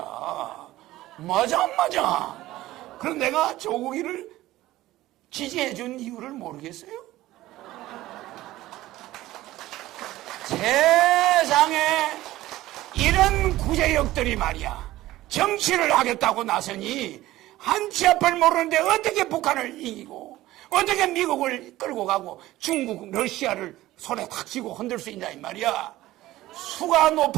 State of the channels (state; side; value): quieter; left; 16.2 dB